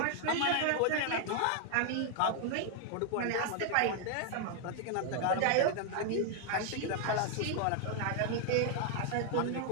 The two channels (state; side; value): different; both; correlation 0.00